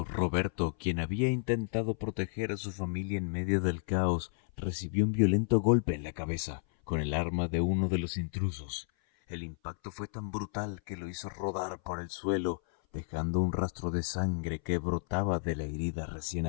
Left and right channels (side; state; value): right; silent; 56 dB below the other